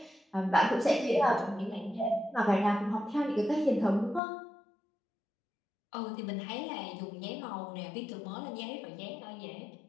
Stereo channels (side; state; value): right; drops out; at 4.2 s